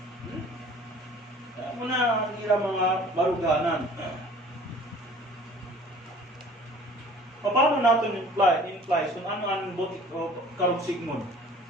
Kaya mo na ang ira mga baruganan. Paano natin imply kung ano ang karugsigmon?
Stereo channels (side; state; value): both; normal; correlation 0.48